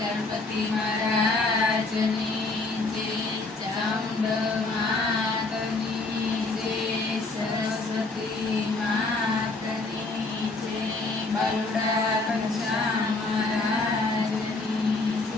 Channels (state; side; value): quieter; right; 3.4 dB